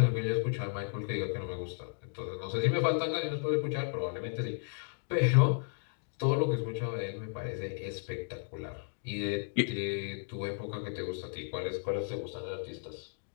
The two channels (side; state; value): right; silent; digital silence